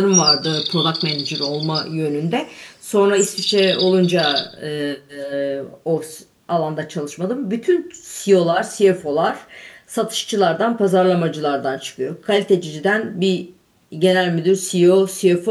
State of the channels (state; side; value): identical; both; correlation 1.00